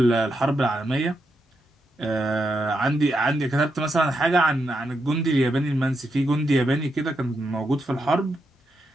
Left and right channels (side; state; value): both; normal; correlation 0.83